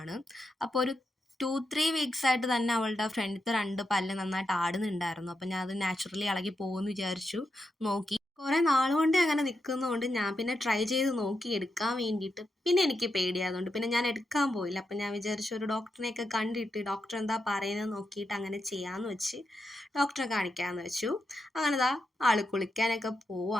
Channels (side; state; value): both; normal; correlation 0.85